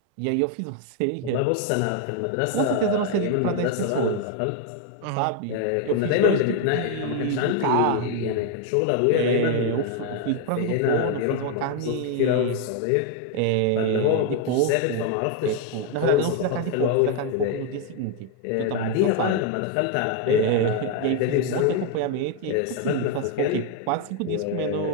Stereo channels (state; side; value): different; both; correlation 0.01